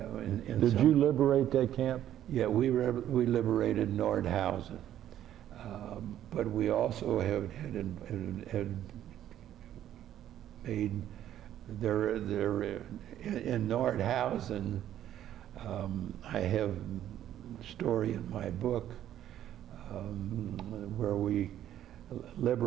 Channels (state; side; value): quieter; left; 11.5 dB